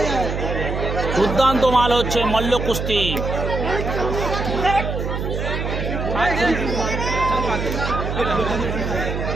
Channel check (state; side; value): noise; right; hum, 3 dB below the sound